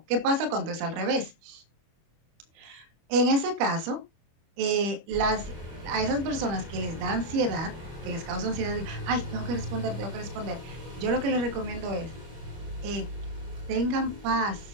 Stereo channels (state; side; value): late; left; 25 ms